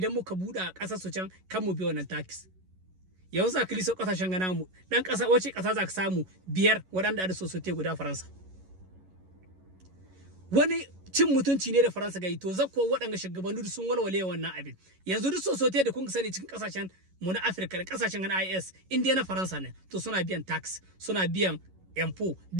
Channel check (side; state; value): left; late; 11 ms